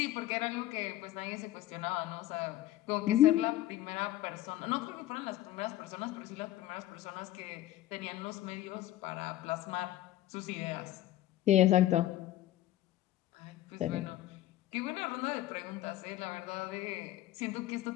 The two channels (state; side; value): quieter; right; 14.2 dB